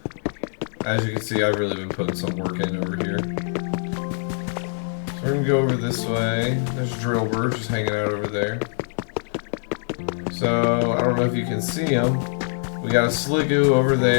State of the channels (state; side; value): silent; right; 56 dB below the other